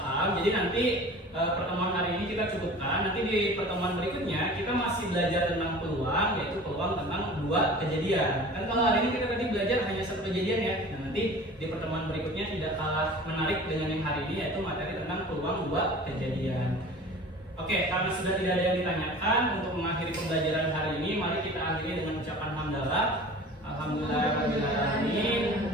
jadi nanti pertemuan hari ini kita cukupkan. Nanti di pertemuan berikutnya kita masih belajar tentang peluang, yaitu peluang tentang dua kejadian. Kan kalau hari ini kita tadi belajar hanya satu kejadian ya. Nah, nanti di pertemuan berikutnya tidak kalah menarik dengan yang hari ini, yaitu materi tentang peluang dua kejadian. Oke, karena sudah tidak ada yang ditanyakan, untuk mengakhiri pembelajaran hari ini, mari kita akhiri dengan ucapan hamdalah. Alhamdulillahirrahmanirrahim.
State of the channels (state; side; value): normal; both; correlation 0.41